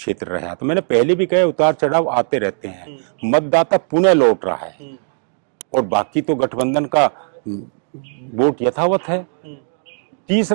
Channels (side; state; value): left; silent; digital silence